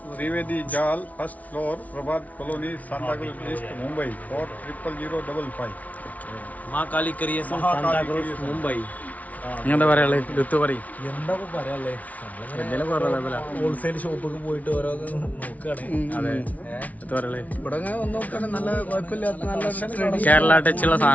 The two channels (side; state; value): right; late; 0.071 ms